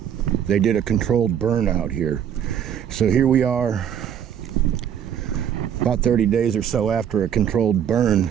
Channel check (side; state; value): left; quieter; 9.0 dB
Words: they did a controlled burn out here. So here we are, about 30 days or so after a controlled